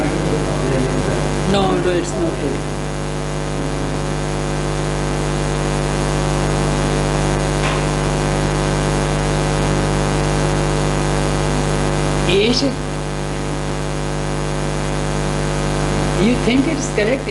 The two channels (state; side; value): identical; both; correlation 1.00